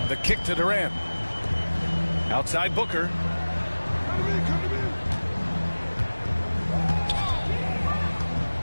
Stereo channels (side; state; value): both; inverted; correlation -1.00